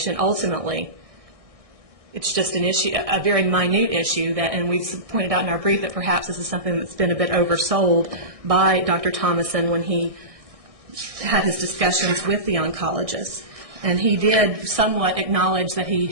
ultimately. It's just an issue, a very minute issue, that, and we've pointed out in our brief that perhaps this is something that's been a bit oversold by Dr. Thomason when he had his discussions with the oncologist. And he did somewhat acknowledge that he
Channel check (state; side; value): late; left; 1.6 ms